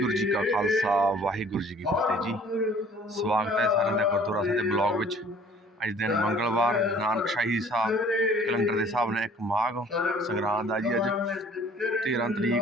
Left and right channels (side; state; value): both; normal; correlation 0.53